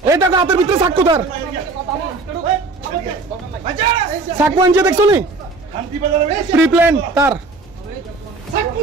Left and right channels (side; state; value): left; quieter; 3.6 dB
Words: এই টাকা হাতের ভিতরে সাক্কু তার সাক্কু আনছে দেখছো নি প্রি প্ল্যান তার